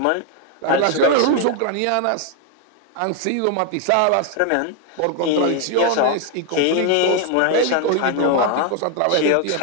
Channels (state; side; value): different; both; correlation 0.01